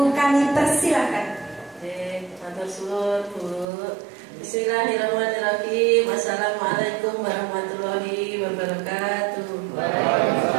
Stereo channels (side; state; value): left; drops out; at 3.7 s